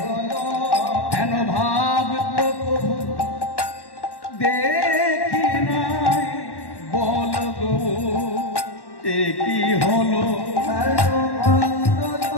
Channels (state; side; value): late; right; 1.1 ms